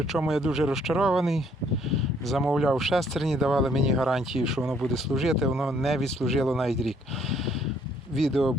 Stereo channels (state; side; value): normal; both; correlation 0.65